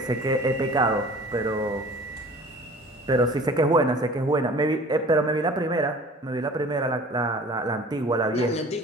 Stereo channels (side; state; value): both; normal; correlation 0.45